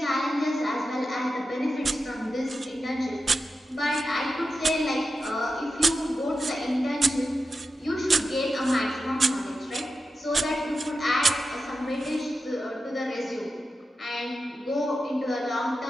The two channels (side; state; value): both; normal; correlation 0.90